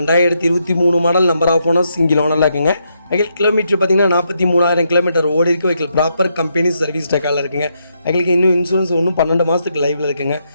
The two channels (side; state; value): both; inverted; correlation -0.79